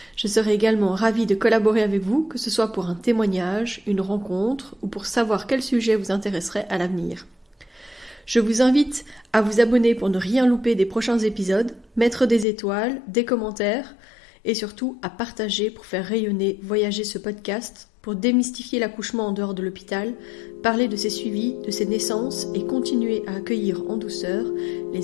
Je serai également ravie de collaborer avec vous, que ce soit pour un témoignage, une rencontre ou pour savoir quel sujet vous intéresserait à l'avenir. Je vous invite à vous abonner pour ne rien louper des prochains épisodes, mettre des étoiles, des commentaires et surtout à partager pour faire rayonner, voyager ce podcast, pour démystifier l'accouchement en dehors de l'hôpital, parler de ses suivis, de ses naissances et continuer à accueillir en douceur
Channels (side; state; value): right; drops out; at 12.5 s